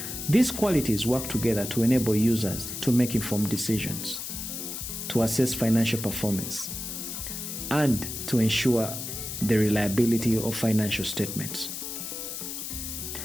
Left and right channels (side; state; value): left; noise; hiss, 6 dB below the sound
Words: These qualities work together to enable users to make informed decisions, to assess financial performance, and to ensure the reliability of financial statements.